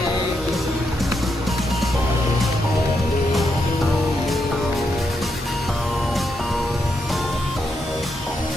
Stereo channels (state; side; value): normal; both; correlation 0.82